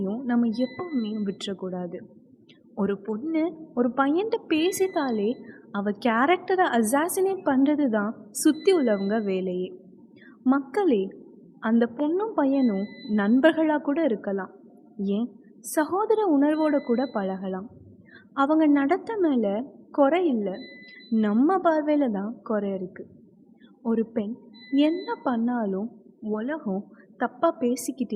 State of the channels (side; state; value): both; identical; correlation 1.00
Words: நம்ம எப்பவுமே விட்டுறக்கூடாது. ஒரு பொண்ணு ஒரு பையன்கிட்ட பேசிட்டாலே அவள் கேரக்டரை அசாசினேட் பண்ணுறது தான் சுற்றி உள்ளவங்க வேலையே. மக்களே, அந்த பொண்ணும் பையனும் நண்பர்களாக கூட இருக்கலாம், ஏன் சகோதர உணர்வோடு கூட பழகலாம். அவங்க நடத்த மேலே குறை இல்லை, நம்ம பார்வையில் தான் குறை இருக்குது. ஒரு பெண் என்ன பண்ணாலும் உலகம் தப்பாக